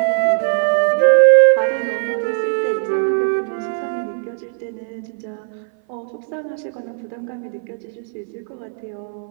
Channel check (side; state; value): left; silent; 59 dB below the other